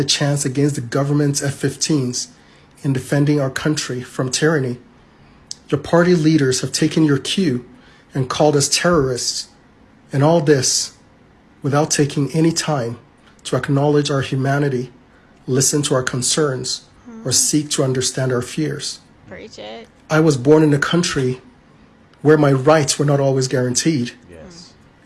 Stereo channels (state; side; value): identical; both; correlation 1.00